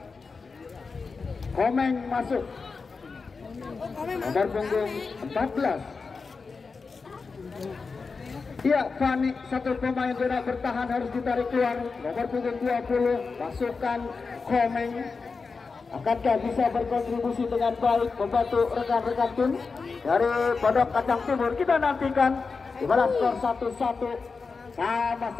Komeng masuk nomor punggung 14. Iya, Fani satu pemain zona bertahan harus ditarik keluar. Nomor punggung 20 masukkan Komeng. Akankah bisa berkontribusi dengan baik membantu rekan-rekan tim dari Pondok Kacang Timur? Kita nantikan di mana skor 1-1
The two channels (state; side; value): quieter; right; 4.6 dB